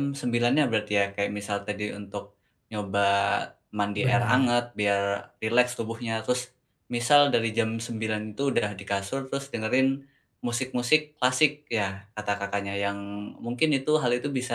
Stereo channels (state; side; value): identical; both; correlation 1.00